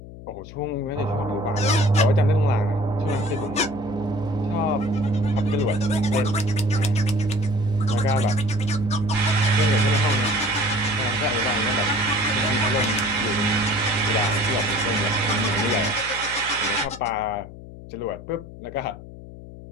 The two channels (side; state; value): left; noise; hum, 15 dB below the sound